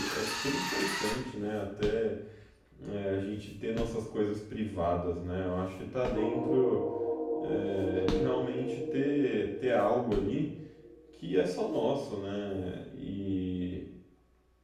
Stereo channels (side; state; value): both; identical; correlation 1.00